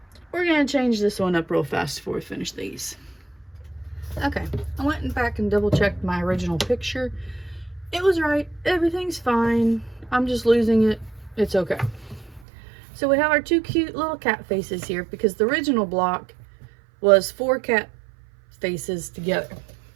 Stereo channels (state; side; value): drops out; left; at 12.5 s